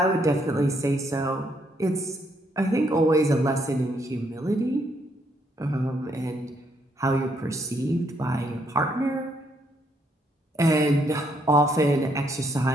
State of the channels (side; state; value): both; normal; correlation 0.72